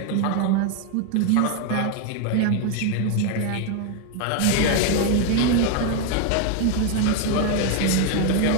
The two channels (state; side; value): different; both; correlation 0.01